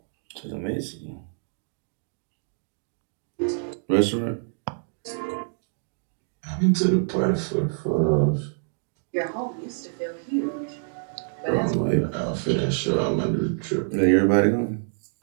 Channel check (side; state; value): left; silent; digital silence